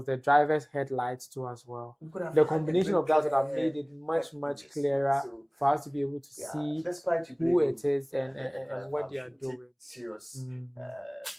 the driver's headlights too as well, the combination of that would have made it much clearer for us to be able to see who it is and what they are doing. Serious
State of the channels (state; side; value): identical; both; correlation 1.00